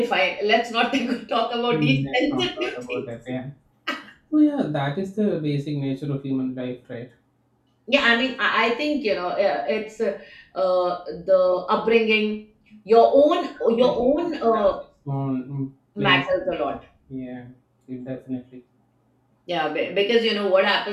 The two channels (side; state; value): both; identical; correlation 1.00